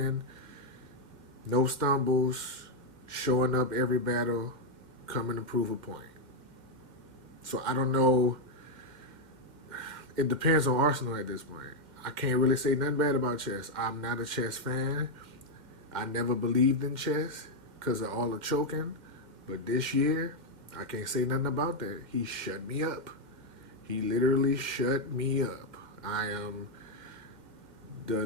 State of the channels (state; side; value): late; left; 2.1 ms